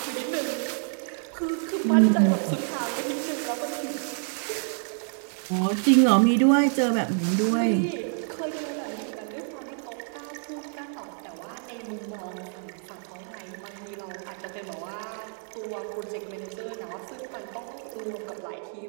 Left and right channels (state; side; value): silent; left; 56 dB below the other